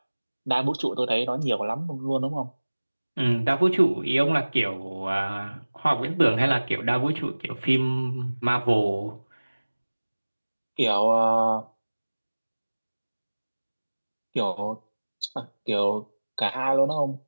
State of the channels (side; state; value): both; inverted; correlation -1.00